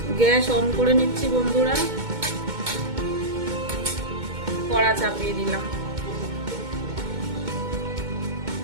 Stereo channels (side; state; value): left; late; 2.2 ms